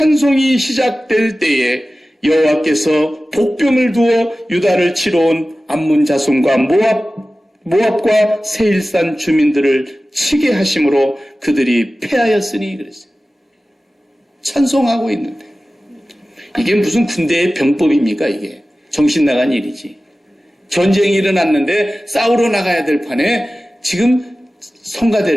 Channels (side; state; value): both; normal; correlation 0.96